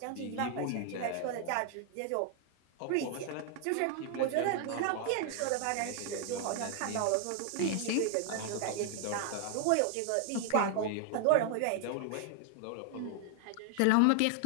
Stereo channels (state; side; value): different; both; correlation 0.00